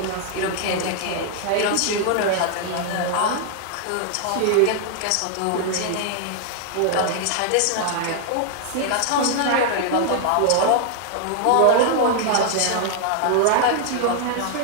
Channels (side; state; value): both; different; correlation 0.00